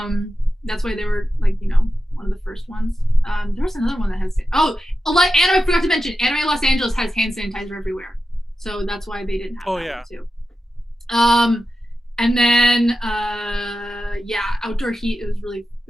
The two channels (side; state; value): both; normal; correlation 0.91